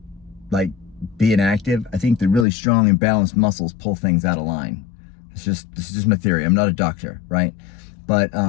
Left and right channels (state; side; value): drops out; right; at 2.5 s